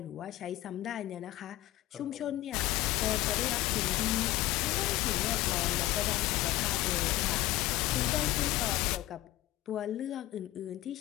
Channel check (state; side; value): quieter; right; 16.1 dB